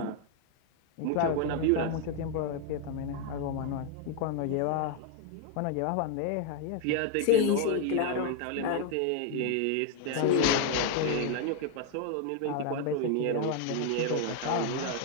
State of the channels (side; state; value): both; different; correlation 0.01